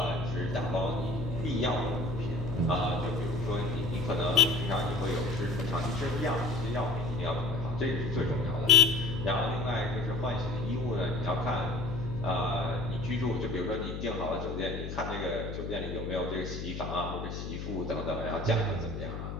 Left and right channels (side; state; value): left; noise; hum, 6 dB below the sound